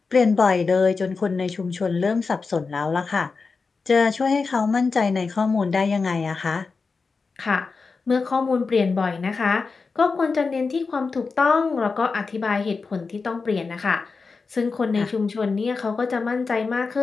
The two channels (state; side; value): quieter; right; 4.5 dB